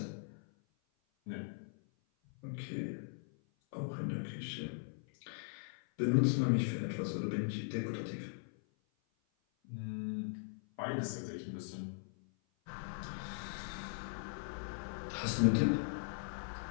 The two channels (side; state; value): right; silent; 51 dB below the other